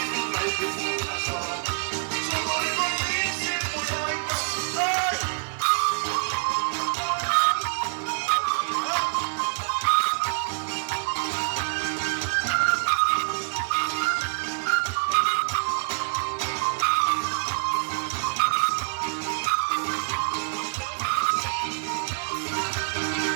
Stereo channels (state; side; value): silent; left; digital silence